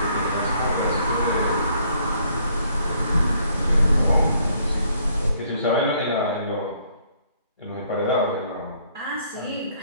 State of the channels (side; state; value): both; inverted; correlation -0.66